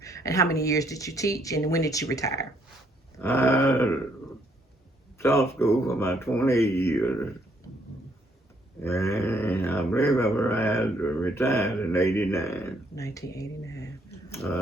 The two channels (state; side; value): normal; both; correlation 0.70